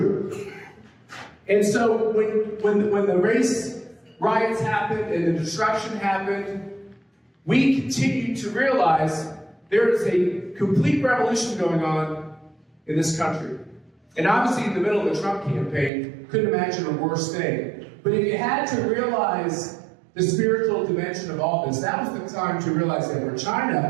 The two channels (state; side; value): drops out; left; at 15.9 s